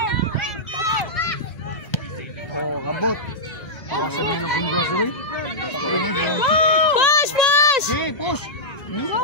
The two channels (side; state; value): right; late; 1.8 ms